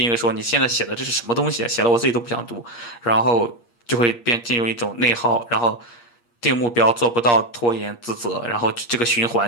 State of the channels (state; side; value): late; right; 8.5 ms